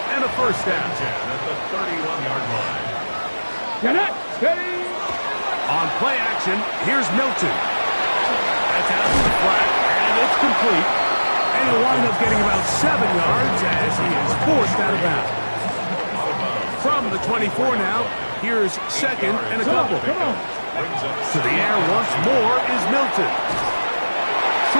and a first down. At the 31-yard line. Get it. Steady. On play action, here's Milton. That's out to the flat, and it's complete. And he'll wind up getting about 7 yards as he is forced out of bounds. From the 24 now, here's 2nd and a couple. Come on. To the air once more is Milton.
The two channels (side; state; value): both; inverted; correlation -1.00